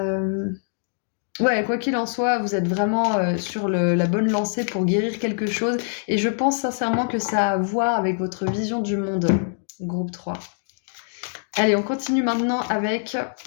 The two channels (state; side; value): silent; right; digital silence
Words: quoi qu'il en soit, vous êtes vraiment sur la bonne lancée pour guérir quelque chose. Et je pense sincèrement que ça a à voir avec votre vision du monde, groupe 3. Allez, on continue maintenant avec